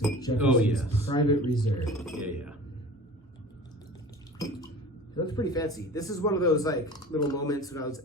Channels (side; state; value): both; normal; correlation 0.40